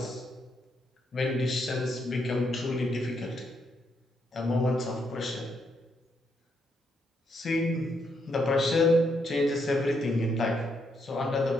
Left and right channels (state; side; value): normal; both; correlation 0.77